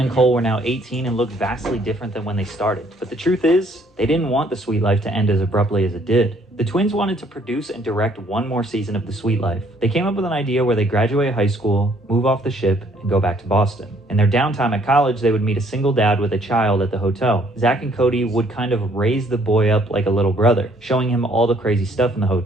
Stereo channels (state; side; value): normal; both; correlation 0.64